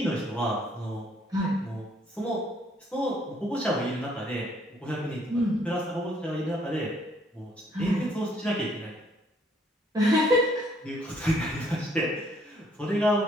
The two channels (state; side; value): normal; both; correlation 0.65